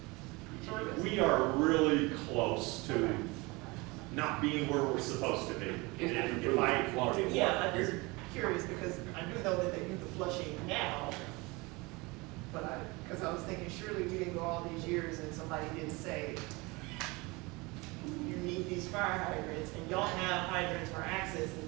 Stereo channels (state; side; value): quieter; left; 25.0 dB